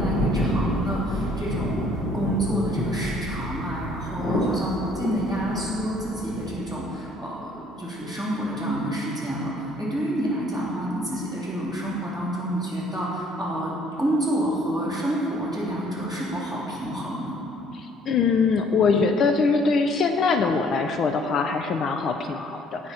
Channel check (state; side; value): normal; both; correlation 0.60